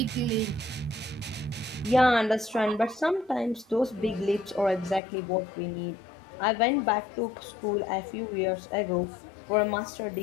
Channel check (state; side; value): drops out; right; at 5.0 s